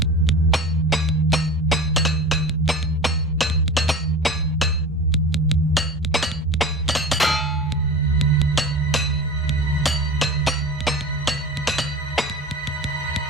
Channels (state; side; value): normal; both; correlation 0.33